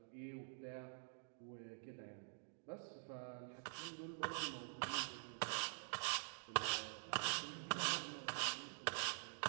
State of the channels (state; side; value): silent; left; digital silence